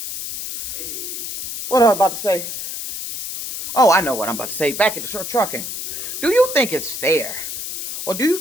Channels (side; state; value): left; noise; hiss, 6 dB below the sound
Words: was I about to say? Oh, I know what I'm about to say. Back at the short trucking. Do you think it's fair, or do you